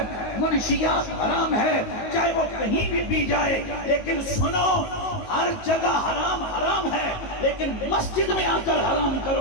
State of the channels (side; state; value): right; late; 19 ms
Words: منشیات حرام ہے، چاہے وہ کہیں بھی پی جائے، لیکن سنو ہر جگہ حرام ہے، لیکن مسجد میں آ کر حرام